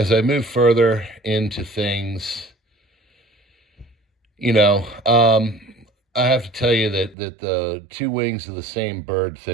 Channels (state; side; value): drops out; left; at 7.2 s